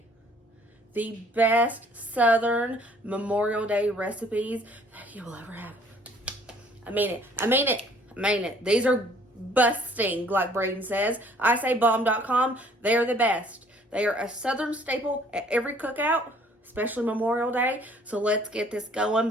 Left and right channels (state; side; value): normal; both; correlation 0.58